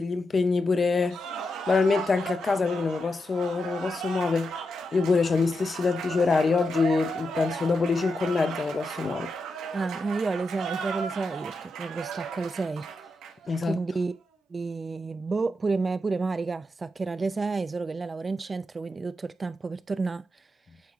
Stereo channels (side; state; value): both; normal; correlation 0.86